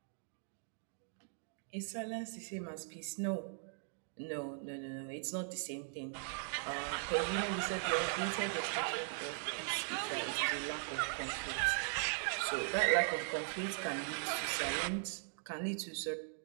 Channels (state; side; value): silent; left; digital silence